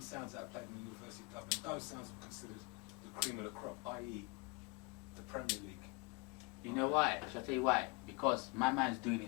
sounds that are played in the University of Dub, and those sounds were considered the cream of the crop, i.e. the Premier League. You know why? Shall I tell you why? Because my man's doing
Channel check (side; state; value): right; quieter; 30.2 dB